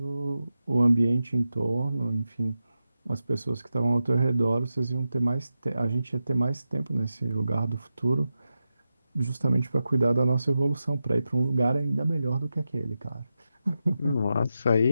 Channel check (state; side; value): inverted; both; correlation -0.91